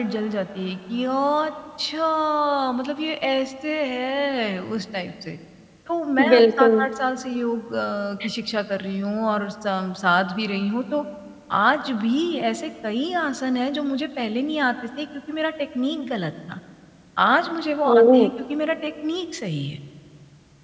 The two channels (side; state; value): both; identical; correlation 1.00